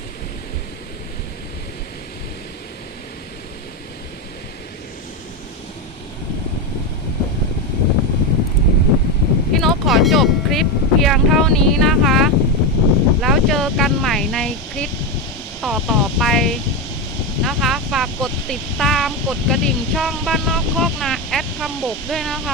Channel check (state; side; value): normal; both; correlation 0.12